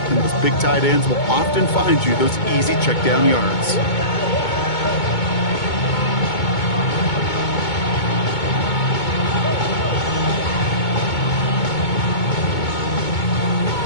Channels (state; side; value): late; right; 2.2 ms